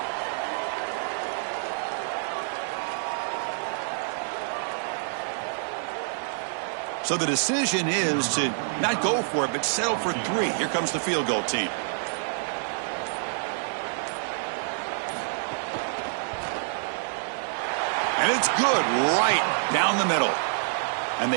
So the decision is to not go for it, but settle for 3. Here comes the field goal team. And it's good right down the middle. And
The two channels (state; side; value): silent; left; digital silence